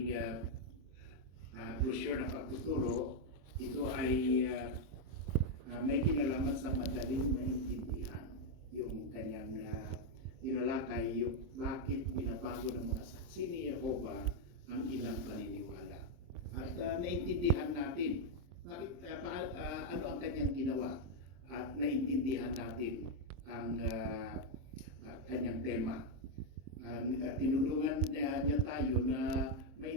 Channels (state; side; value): late; left; 23 ms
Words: brochure na pagtuturo. Ito ay may kinalaman sa madaling maintindihan. Yung kanyang inalakay, yung bakit binabago ng mga saksi ni Jehova ang ilang paniniwala. At naintindihan natin bakit, ano ang kanyang ginawa, at naintindihan natin ang kanyang tema. Tinulungan niya tayo na